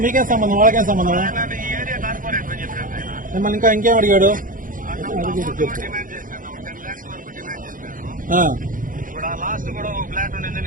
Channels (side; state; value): left; late; 0.39 ms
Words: మీకేం సంబంధం, వాళ్ళకేం సంబంధం? మిమ్మల్ని ఇంకేం అడిగాడు?